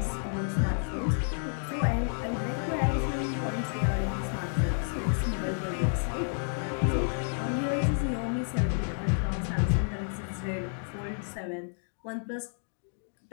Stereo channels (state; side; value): silent; right; digital silence